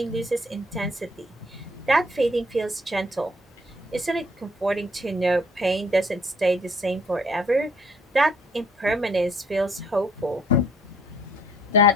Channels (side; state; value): both; normal; correlation 0.61